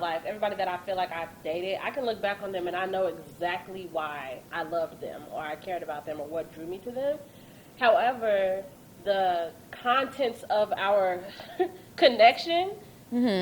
everybody that I feel like I've dated, I can look back on them and I know exactly why I loved them or I cared about them or what drew me to them. However, the contents of our connection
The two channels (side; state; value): both; identical; correlation 1.00